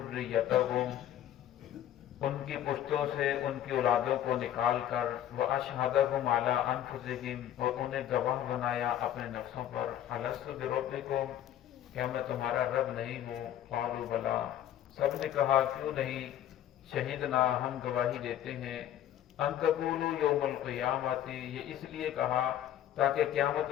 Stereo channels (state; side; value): quieter; right; 11.5 dB